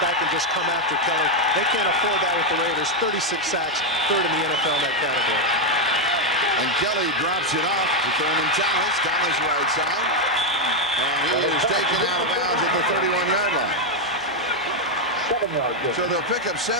and just come after Kelly. They can't afford that with the Raiders. 36 sacks, 3rd in the NFL in that category. And Kelly drops it off to Thurman Thomas. Thomas right side. And he is taken out of bounds at the 31-yard line. So they'll pick up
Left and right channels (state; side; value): normal; both; correlation 0.02